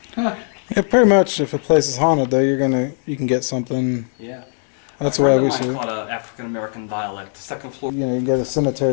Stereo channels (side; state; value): right; silent; 66 dB below the other